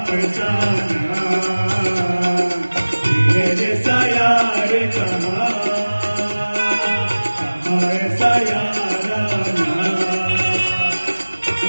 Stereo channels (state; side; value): inverted; both; correlation -1.00